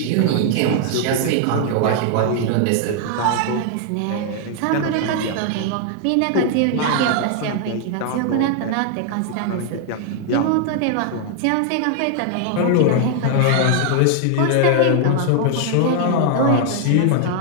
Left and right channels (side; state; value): both; different; correlation 0.00